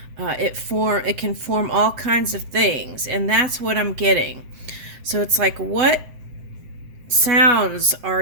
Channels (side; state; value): left; late; 7.7 ms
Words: it can form all kinds of things, and that's what I'm getting. So it's like, what sounds